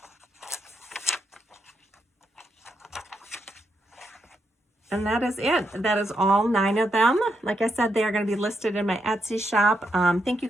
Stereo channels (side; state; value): both; normal; correlation 0.81